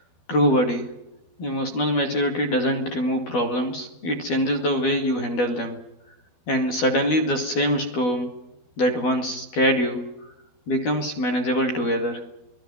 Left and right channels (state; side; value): late; right; 12 ms